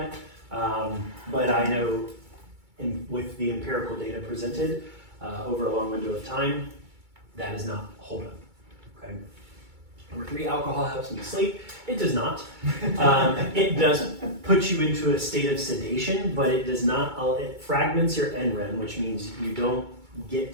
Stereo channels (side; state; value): left; late; 2.3 ms